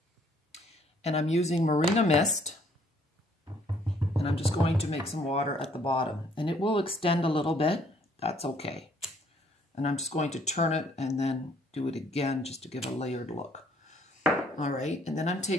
And I'm using Marina Mist, and I'm just going to make some water at the bottom. And it will extend a little bit, that's okay. And I'm just going to turn it and then do it again just to give a layered look. All right, and then I'm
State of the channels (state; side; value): normal; both; correlation 0.63